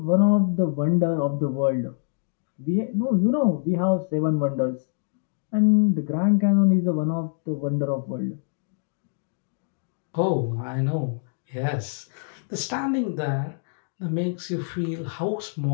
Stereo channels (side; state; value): right; silent; digital silence